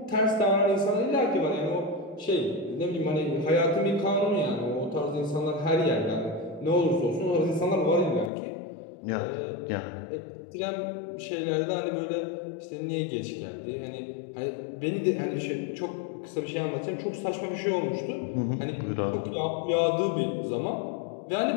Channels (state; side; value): drops out; right; at 8.3 s